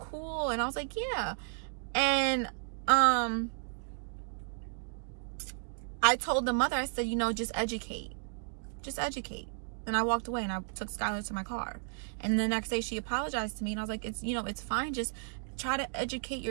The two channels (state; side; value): silent; left; digital silence